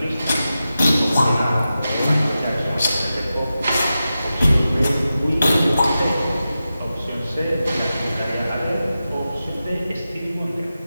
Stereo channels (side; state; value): both; inverted; correlation -0.92